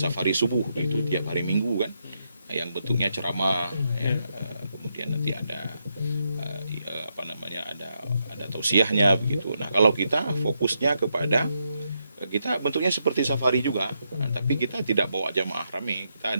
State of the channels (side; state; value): both; inverted; correlation -0.81